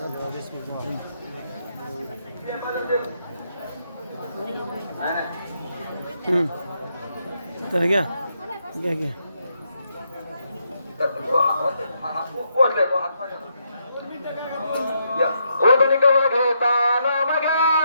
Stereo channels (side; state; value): both; inverted; correlation -0.78